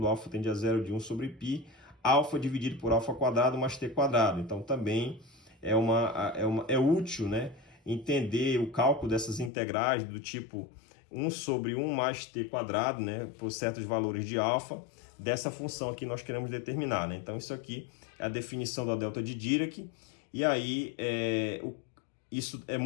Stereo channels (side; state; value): right; drops out; at 9.5 s